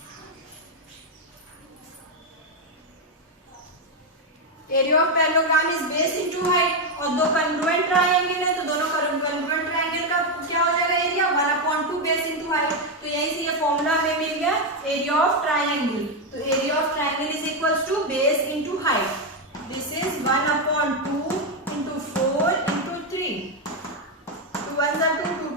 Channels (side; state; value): both; normal; correlation 0.05